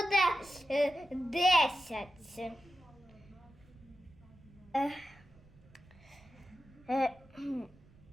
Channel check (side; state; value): right; noise; rumble, 25 dB below the sound